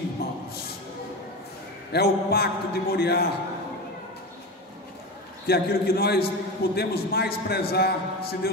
É o pacto de Moriá, que é aquilo que nós podemos mais prezar, se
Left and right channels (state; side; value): normal; both; correlation 0.23